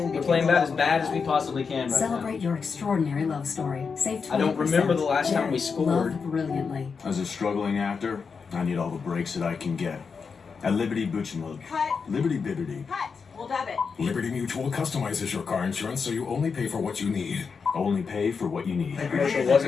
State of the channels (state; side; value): quieter; right; 5.5 dB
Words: We're playing about as bad as we possibly can right Celebrate your extraordinary love story. Save 20%. I don't remember the last time we scored. Love brilliantly. As a struggling actor, I need all the breaks that I can get. At Liberty Butchmug. Cut. Liberty Bibbity. Cut. We'll dub it. Liberty Mutual customizes your car insurance so you only pay for what you need. Only pay for what you need. The commercial